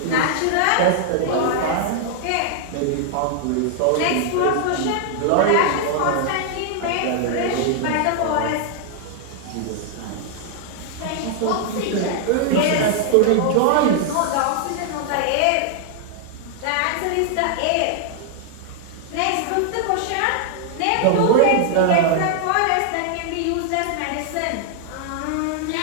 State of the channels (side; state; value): both; different; correlation 0.00